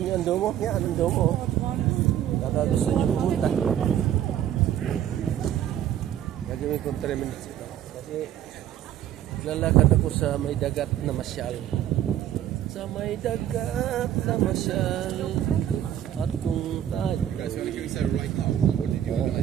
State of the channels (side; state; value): left; quieter; 11.0 dB